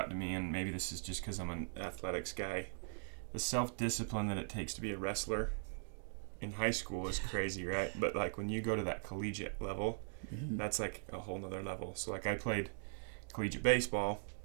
to me, and maybe this is just because I'm an athletics guy, the self-discipline that it takes to be a wrestler in high school is crazy, right? But like when you go to that collegiate level, that's like a whole nother level. So like I played collegiate baseball,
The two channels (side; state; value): left; silent; digital silence